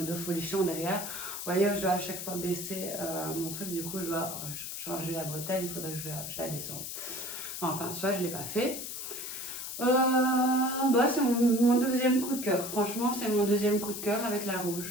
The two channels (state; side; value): noise; left; hiss, 6 dB below the sound